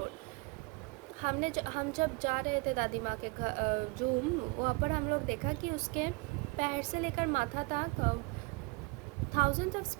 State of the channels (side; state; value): left; quieter; 27.8 dB